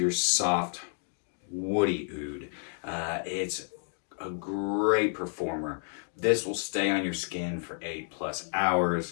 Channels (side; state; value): right; silent; 58 dB below the other